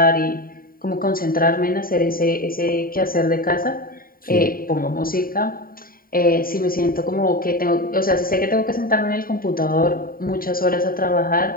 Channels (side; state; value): right; late; 0.42 ms